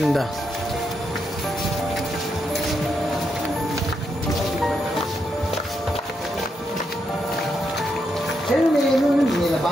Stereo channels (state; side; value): normal; both; correlation 0.81